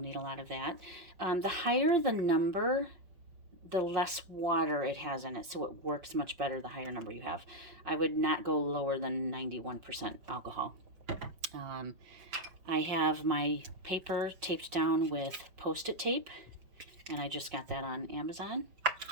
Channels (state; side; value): late; left; 5.5 ms